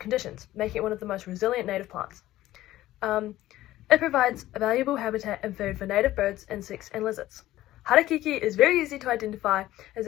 making it one of the most resilient native plants. It provides a valuable habitat and food for native birds, insects, and lizards. Harakeke is very easy to identify, as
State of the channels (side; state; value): right; quieter; 15.1 dB